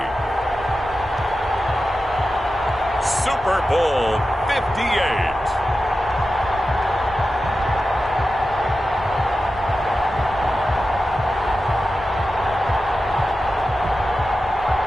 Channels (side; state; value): both; normal; correlation 0.92